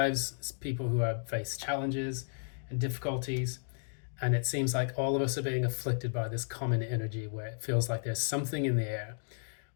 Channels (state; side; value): silent; right; digital silence